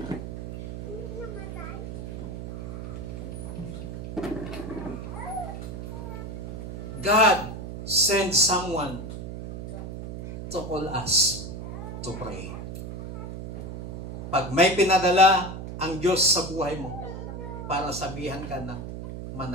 God sent someone to call us to pray. Pag may pinadala ang Diyos sa buhay mo para sabihan ka na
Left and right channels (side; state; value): right; noise; hum, 8 dB below the sound